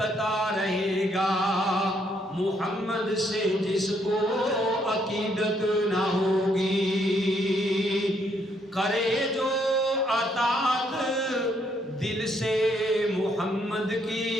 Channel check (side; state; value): both; normal; correlation 0.71